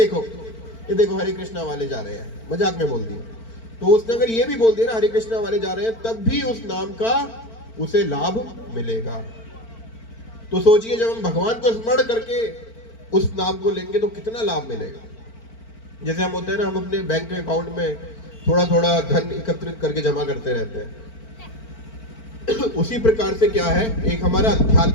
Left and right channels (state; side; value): late; right; 4.4 ms